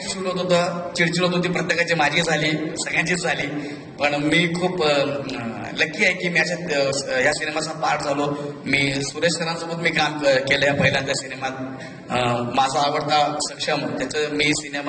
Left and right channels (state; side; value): identical; both; correlation 1.00